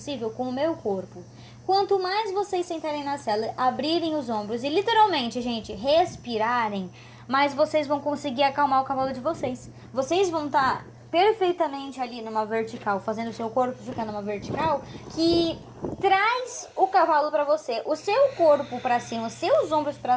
com o meu corpo. Quanto mais vocês sentarem na sela, abrirem os ombros e literalmente, gente, respirarem, mais vocês vão conseguir acalmar o cavalo de vocês. Vocês vão estar perfeitamente ali numa vertical, fazendo o seu corpo ficar numa vertical, que traz o cavalo para você. O seu corpo para cima, os seus ombros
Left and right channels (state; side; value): identical; both; correlation 1.00